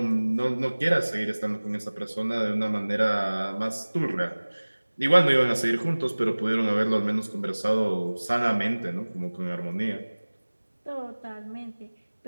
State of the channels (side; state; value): both; inverted; correlation -1.00